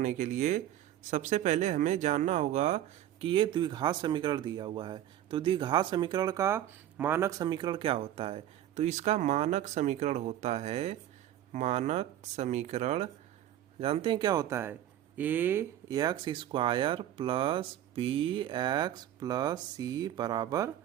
के लिए सबसे पहले हमें जानना होगा कि ये द्विघात समीकरण दिया हुआ है। तो द्विघात समीकरण का मानक समीकरण क्या होता है? तो इसका मानक समीकरण होता है, मानक समीकरण जानते हैं क्या होता है? A X square plus B X plus C बराबर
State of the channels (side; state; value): left; quieter; 12.0 dB